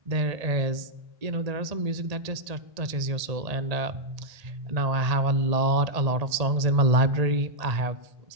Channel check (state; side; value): late; left; 1.8 ms